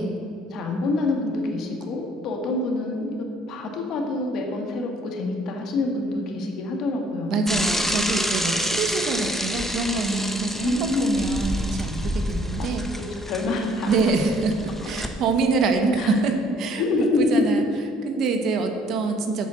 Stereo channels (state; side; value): normal; both; correlation 0.61